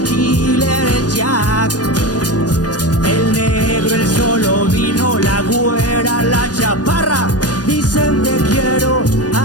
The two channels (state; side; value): late; right; 0.69 ms